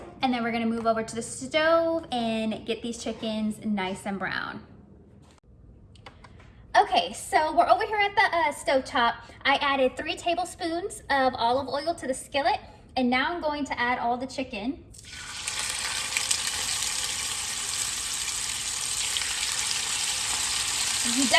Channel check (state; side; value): identical; both; correlation 1.00